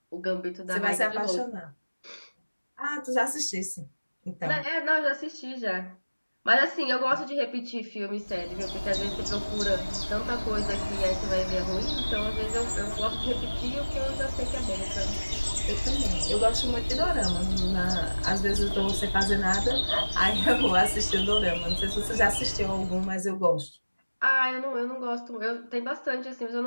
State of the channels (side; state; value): both; inverted; correlation -1.00